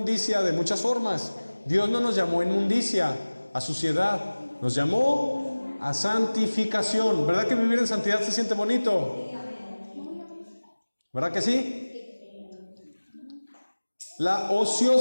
de muchas formas. Dios no nos llamó a inmundicia, a suciedad, nos llamó a santificación. ¿Verdad que vivir en santidad se siente bonito? ¿Verdad que sí? La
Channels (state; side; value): inverted; both; correlation -1.00